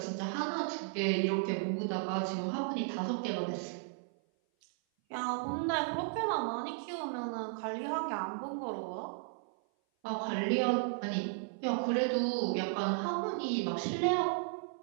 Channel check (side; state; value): left; silent; 55 dB below the other